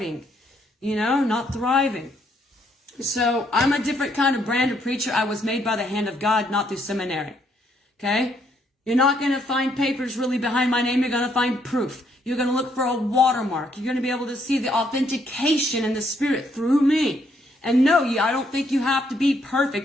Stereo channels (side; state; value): both; normal; correlation 0.72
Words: not thriving. So I'm a different kind of brand of preacher. I was made by the hand of God, not through seminary. Okay? You're not going to find papers really behind my name. You're going to find proof. You're going to look for a watermark. You're going to be able to see the authentication in the Spirit through me. And no, I don't think you have to be